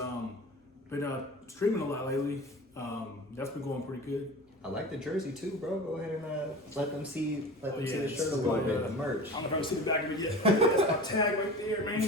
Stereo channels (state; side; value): normal; both; correlation 0.35